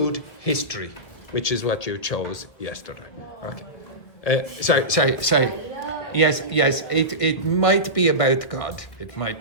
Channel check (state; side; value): late; right; 1.9 ms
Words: history, which is what you chose yesterday. Okay. Sorry. Yes, it might be about God. It